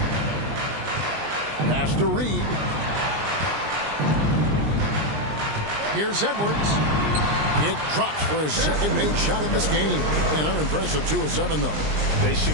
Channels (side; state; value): left; late; 20 ms